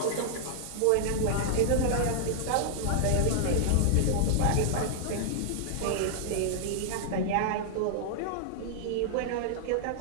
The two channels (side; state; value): both; different; correlation -0.01